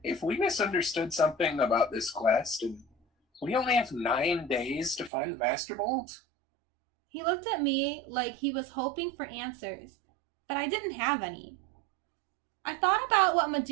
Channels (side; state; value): left; drops out; at 5.1 s